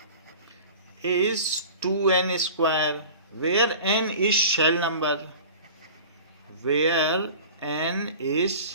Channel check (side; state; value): both; inverted; correlation -0.40